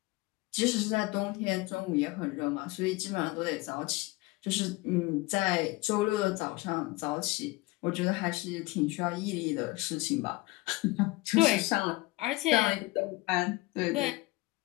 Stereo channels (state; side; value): quieter; right; 21.8 dB